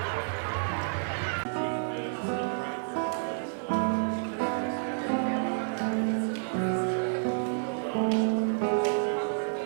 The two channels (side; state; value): left; silent; digital silence